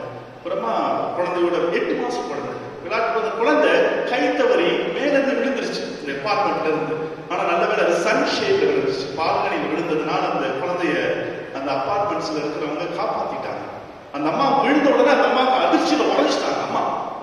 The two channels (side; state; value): both; identical; correlation 1.00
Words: அப்புறமா குழந்தையோட 8 மாசம் குழந்தை விளையாட்டு குழந்தை கை தவறி மேலிருந்து விழுந்துருச்சு இந்த அபார்ட்மெண்ட்ல இருந்து. ஆனா நல்ல வேலை அது சன் ஷேப்ல விழுந்துச்சு. பால்கனியில் விழுந்ததுனால அந்த குழந்தைய அந்த அபார்ட்மெண்ட்ஸ்ல இருக்கிறவங்க காப்பாத்திட்டாங்க. அந்த அம்மா விழுந்த உடனே அந்த அம்மாவுக்கு அதிர்ச்சியில உடைச்சிட்டாங்க. அம்மா